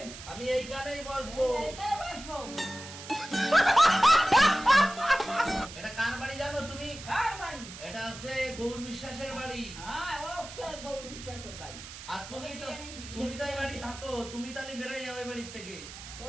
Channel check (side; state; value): right; noise; hiss, 13 dB below the sound